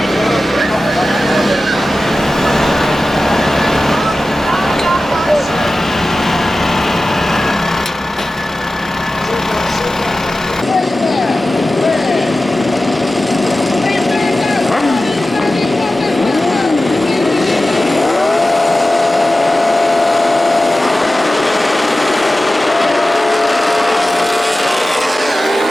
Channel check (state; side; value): normal; both; correlation 0.95